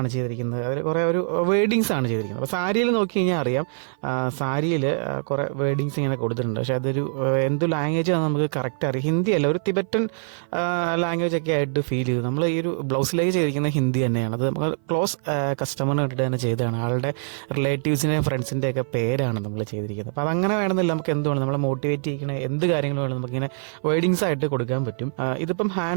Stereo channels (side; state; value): left; silent; 56 dB below the other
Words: ചെയ്തിരിക്കുന്നത്. അതിൽ കുറേ ഒരു വേർഡിങ്സ് ആണ് ചെയ്തിരിക്കുന്നത്. അപ്പോൾ സാരിയിൽ നോക്കി കഴിഞ്ഞാൽ അറിയാം, സാരിയിൽ കുറേ വേർഡിങ്സ് ഇങ്ങനെ കൊടുത്തിട്ടുണ്ട്. പക്ഷേ അതൊരു എന്ത് ലാംഗ്വേജ് ആണ് നമുക്ക് കറക്റ്റ് അറിയാം. ഹിന്ദി അല്ല, ഒരു തിബറ്റൻ ലാംഗ്വേജ് ഒക്കെ ആയിട്ട് ഫീൽ ചെയ്തു. നമ്മൾ ഈ ഒരു ബ്ലൗസിലേക്ക് ചെയ്തിരിക്കുന്ന ഹിന്ദി തന്നെയാണ്. അത് നമുക്ക് ക്ലോസ് കസ്റ്റമറിന് വേണ്ടിയിട്ട് തന്നെ ചെയ്തതാണ്. ആളുടെ റിലേറ്റീവ്സിൻ്റെയും ഫ്രണ്ട്സിൻ്റെ ഒക്കെ പേരാണ് നമ്മൾ ചെയ്തിരിക്കുന്നത്. അപ്പോൾ അതങ്ങനെ വേണമെന്നില്ല, നമുക്ക് എന്തുകൊണ്ട് നമ്മളെ മോട്ടിവേറ്റ് ചെയ്യിക്കണ എന്ത് കാര്യങ്ങളും വേണം നമുക്കിങ്ങനെ വേർഡിങ്സ് ആയിട്ട് കൊടുക്കാൻ പറ്റും. ഇതിപ്പം